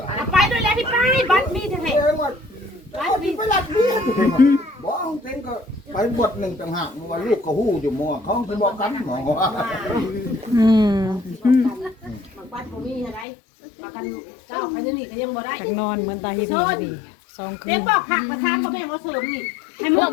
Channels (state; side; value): drops out; right; at 13.2 s